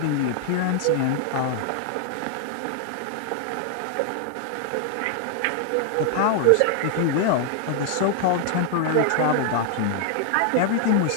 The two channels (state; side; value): different; both; correlation 0.00